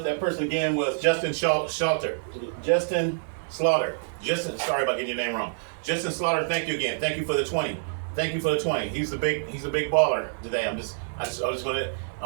person again was Justin Slaughter. Justin, sorry about getting your name wrong. Justin Slaughter, thank you again. Thank you for the 20. Thank you for the 20. He's a big baller today. I'm just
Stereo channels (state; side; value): silent; left; digital silence